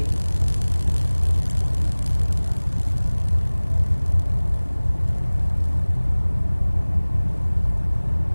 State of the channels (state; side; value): inverted; both; correlation -1.00